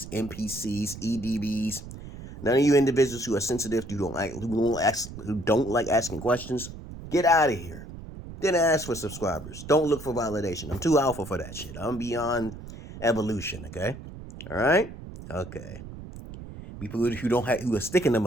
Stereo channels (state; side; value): noise; right; rumble, 13 dB below the sound